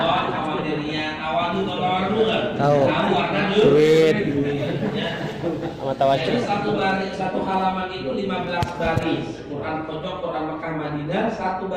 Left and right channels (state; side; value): identical; both; correlation 1.00